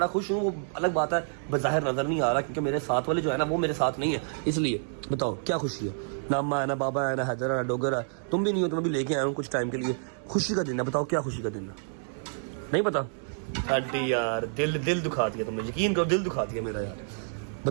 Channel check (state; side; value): silent; left; digital silence